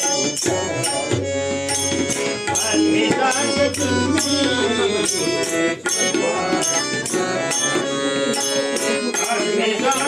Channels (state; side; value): identical; both; correlation 1.00